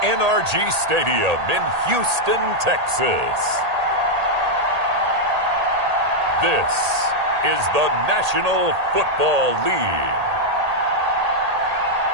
NRG Stadium in Houston, Texas, this is the National Football League.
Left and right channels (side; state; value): left; late; 1.8 ms